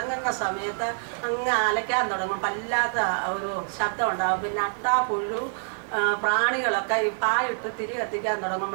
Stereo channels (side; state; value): left; silent; 61 dB below the other